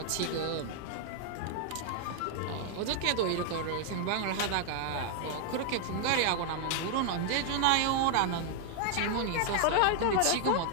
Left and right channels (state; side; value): different; both; correlation 0.00